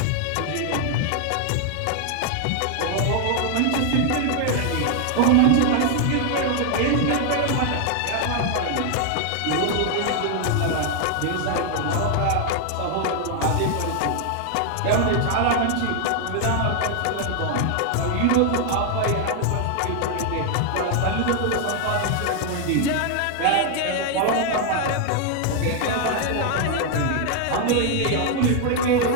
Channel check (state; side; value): different; both; correlation 0.00